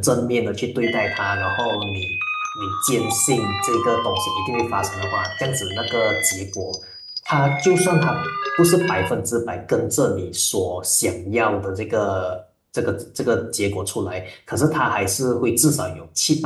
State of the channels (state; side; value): identical; both; correlation 1.00